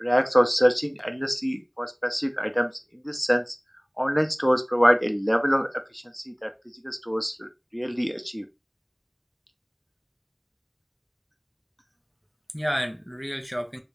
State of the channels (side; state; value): both; identical; correlation 1.00